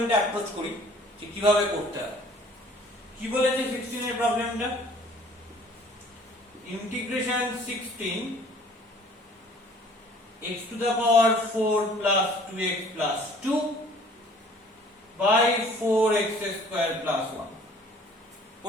approach করি যে কিভাবে করতে হয়। কি বলেছে 16 এর প্রবলেমটা? Integration 16 x to the power 4 plus 2x plus 2 by 4x square plus 1.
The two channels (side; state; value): both; normal; correlation 0.53